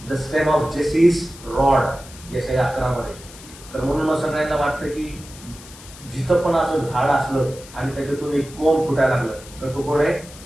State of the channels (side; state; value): left; noise; hiss, 18 dB below the sound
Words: द स्टेम ऑफ जेसीस रॉड, यशाया 11 मध्ये. तर म्हणून मग सगळ्यांना वाटतं की जिथं पण असं झाड असलं आणि त्याच्यातून एक कोंब फुटायला लागलं तर तो कोण आहे,